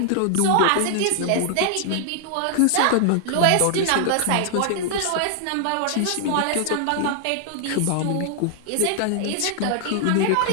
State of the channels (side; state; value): both; different; correlation -0.01